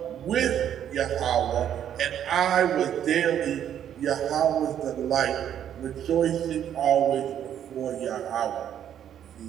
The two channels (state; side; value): quieter; left; 9.9 dB